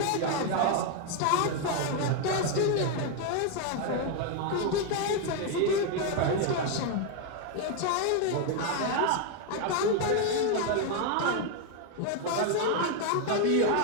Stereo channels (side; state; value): both; different; correlation 0.01